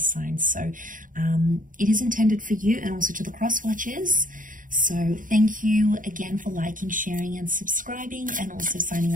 So it is intended for you and also to the cross watchers. So thank you again for liking, sharing and subscribing, and also signing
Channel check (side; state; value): left; late; 0.39 ms